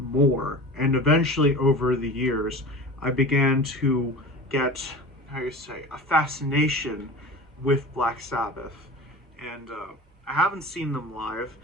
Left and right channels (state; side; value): normal; both; correlation 0.34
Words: And eventually, over the years, I began to get, how you say, a fascination with Black Sabbath. And I haven't seen them live.